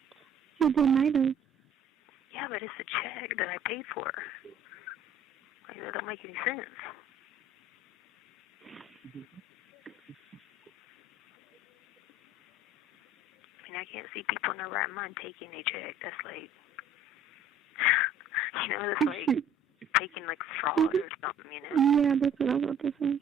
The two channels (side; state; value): both; normal; correlation 0.52